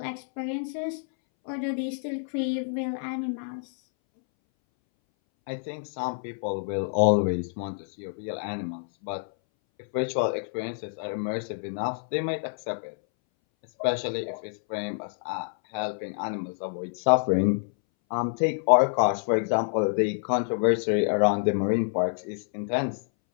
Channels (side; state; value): right; silent; 60 dB below the other